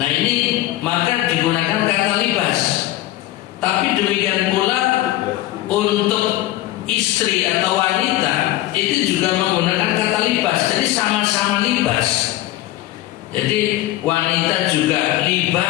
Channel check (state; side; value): quieter; right; 15.6 dB